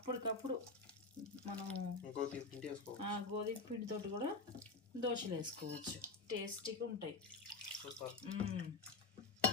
మనం గోధుమ పిండితో కూడా దోశలు వేసుకోవచ్చు. టేస్టీగా ఉంటాయి.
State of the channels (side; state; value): right; quieter; 3.8 dB